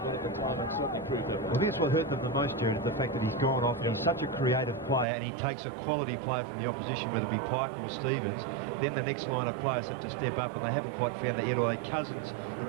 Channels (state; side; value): drops out; left; at 5.1 s